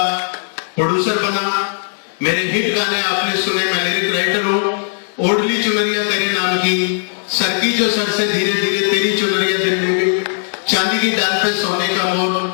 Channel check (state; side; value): silent; right; 60 dB below the other